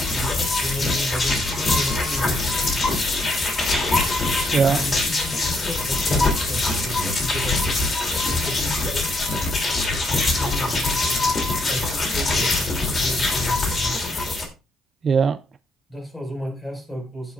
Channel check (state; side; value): normal; both; correlation 0.74